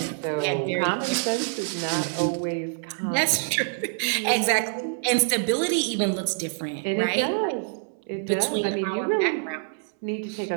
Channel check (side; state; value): left; silent; 61 dB below the other